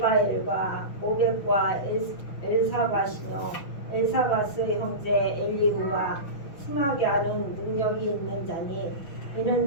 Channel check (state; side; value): late; right; 6.2 ms